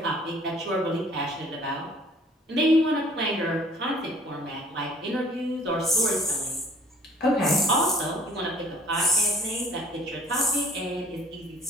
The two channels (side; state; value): both; normal; correlation 0.54